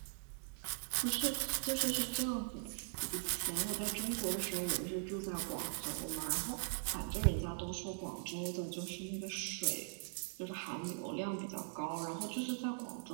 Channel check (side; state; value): left; silent; digital silence